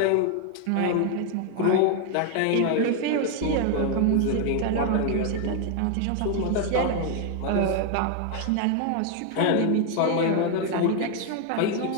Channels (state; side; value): different; both; correlation 0.00